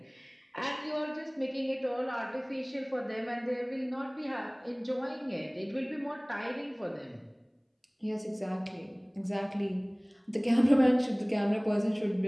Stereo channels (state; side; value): identical; both; correlation 1.00